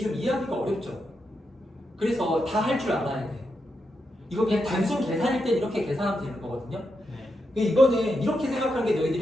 이해하기가 어렵죠. 그래서 다 할 줄 알아야 돼. 이거 그냥 단순 계산일 땐 이렇게 계산하면 되는 거거든요. 네. 근데 이거는 이렇게 생각하는 게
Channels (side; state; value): both; normal; correlation 0.85